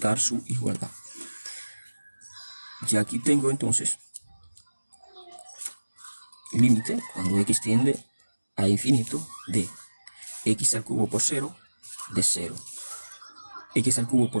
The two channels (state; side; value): inverted; both; correlation -1.00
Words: su igualdad. Y aquí tengo entonces límite cuando x tiende a infinito de x al cubo por 0 de 0. X al cubo